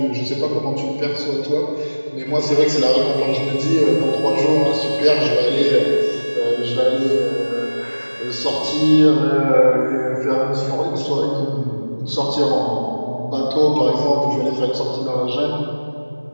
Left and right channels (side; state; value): both; inverted; correlation -1.00